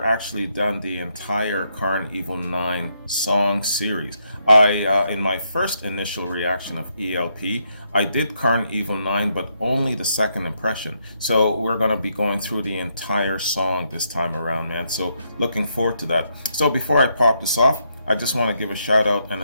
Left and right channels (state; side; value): inverted; both; correlation -0.77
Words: actually done the entire Karn Evil 9 song series. In my first initial reaction of ELP, I did Karn Evil 9, but only the second impression. So we're going to be going through the entire song this time around, man. So looking forward to that. So before I pop this off, I just want to give a shout out and